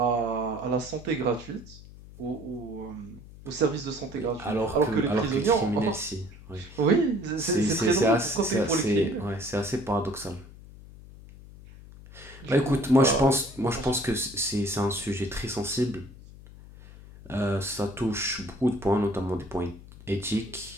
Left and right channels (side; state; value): left; noise; hum, 18 dB below the sound